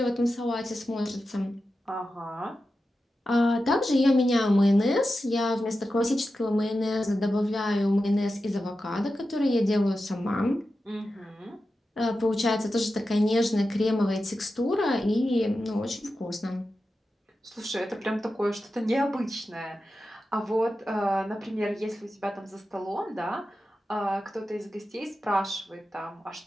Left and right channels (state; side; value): normal; both; correlation 0.91